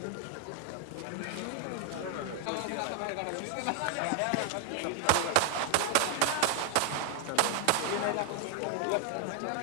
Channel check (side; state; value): both; different; correlation 0.00